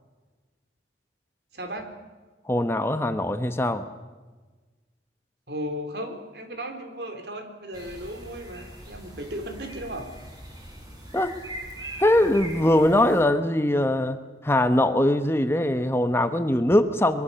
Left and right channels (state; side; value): normal; both; correlation 0.77